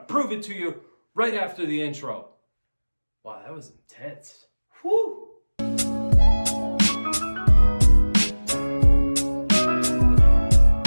prove it to you right after the intro. Wow, that was intense. Whew!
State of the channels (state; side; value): inverted; both; correlation -1.00